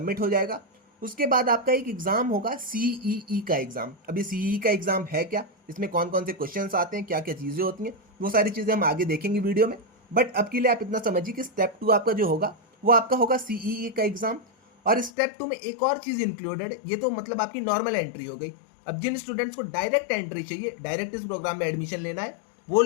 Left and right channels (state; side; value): drops out; right; at 15.1 s